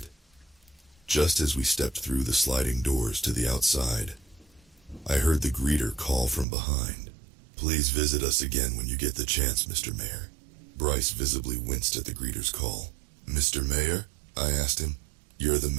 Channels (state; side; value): drops out; left; at 6.5 s